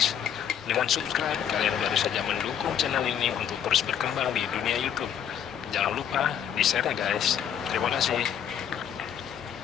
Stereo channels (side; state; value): right; quieter; 9.1 dB